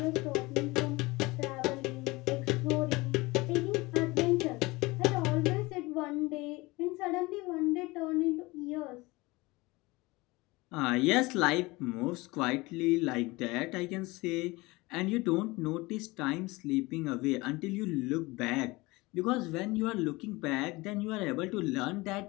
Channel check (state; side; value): quieter; right; 22.5 dB